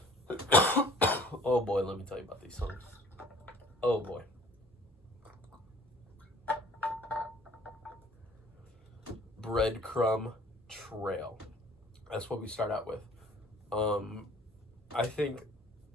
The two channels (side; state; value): both; normal; correlation 0.52